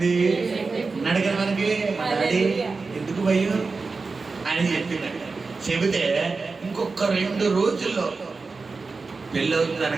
అన్నాడు కదా మనకి. డాడీ ఎందుకు భయం అని చెప్పింది. చెబితే ఇంకొక 2 రోజుల్లో పెళ్ళి అవుతుంది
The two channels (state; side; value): quieter; left; 4.2 dB